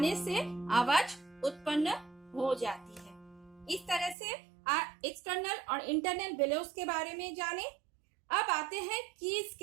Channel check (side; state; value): left; drops out; at 4.2 s